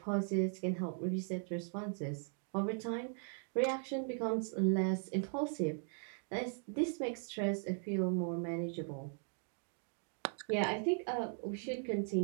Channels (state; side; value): silent; left; 52 dB below the other